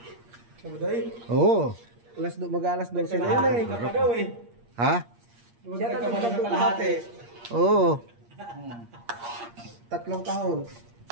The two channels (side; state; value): left; late; 8.6 ms